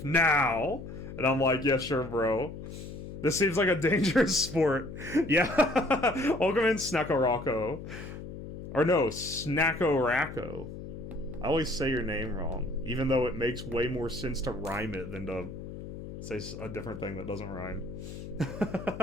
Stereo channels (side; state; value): left; noise; hum, 10 dB below the sound